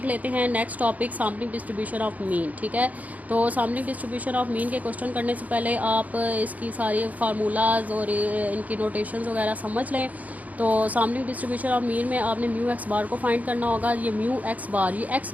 लेते हैं next topic, sampling distribution of mean. ठीक है, तो सैम्पलिंग डिस्ट्रीब्यूशन ऑफ मीन के क्वेश्चन करने से पहले आप इसकी सारी फार्मूलाज और इनकी नोटेशंस वगैरह समझ लें। तो सैम्पलिंग डिस्ट्रीब्यूशन ऑफ मीन में आपने म्यू एक्स बार को फाइंड करना होगा। ये म्यू एक्स बार, ये एक्स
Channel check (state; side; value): late; left; 0.075 ms